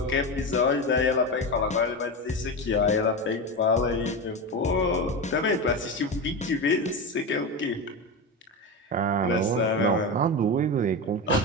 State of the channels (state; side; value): normal; both; correlation 0.19